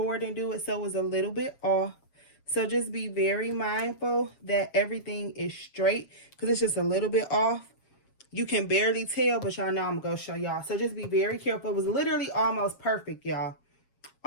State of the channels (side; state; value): right; late; 7.4 ms